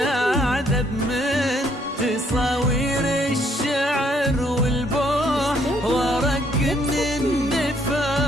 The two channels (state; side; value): normal; both; correlation 0.68